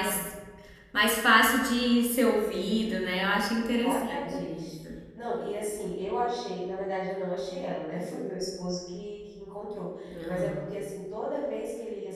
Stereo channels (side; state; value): both; identical; correlation 1.00